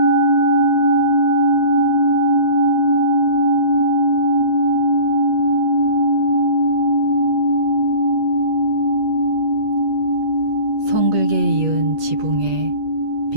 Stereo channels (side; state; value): left; late; 8.5 ms